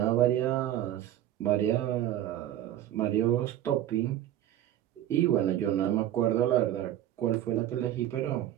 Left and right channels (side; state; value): left; quieter; 12.4 dB